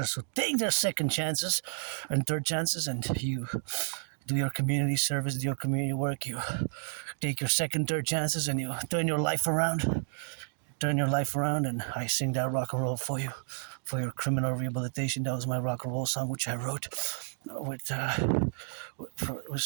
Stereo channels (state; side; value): silent; left; digital silence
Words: who take their second chances and third chances, and you do your community service, do your community work, you take your second, third chances, and you turn your life around, and I sing that rock and roll for you, for your criminal rehabilitation. That was my rock and roll song, which I wrote with